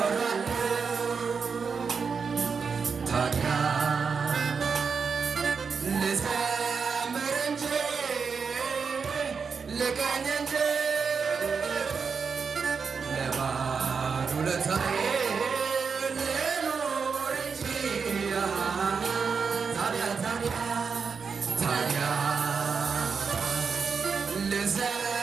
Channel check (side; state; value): left; quieter; 5.6 dB